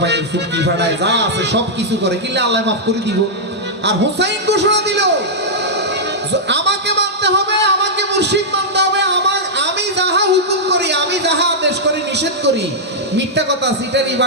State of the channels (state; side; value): normal; both; correlation -0.08